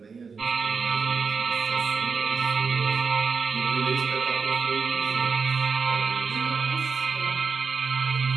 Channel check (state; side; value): quieter; left; 5.3 dB